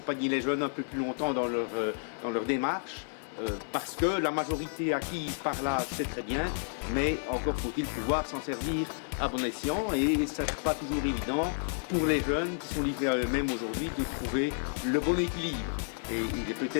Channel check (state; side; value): silent; right; 57 dB below the other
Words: les jeunes un peu plus longtemps dans leur démarche. Parce que la majorité acquise par là, c'est très bien, mais encore faut-il pouvoir s'en servir à bon escient et ce n'est pas toujours évident pour les jeunes qui sont livrés à eux-mêmes aujourd'hui de trouver le bon équilibre. Et